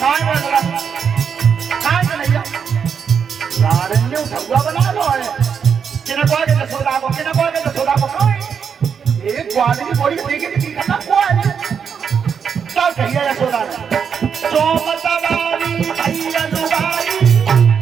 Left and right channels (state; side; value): quieter; left; 6.9 dB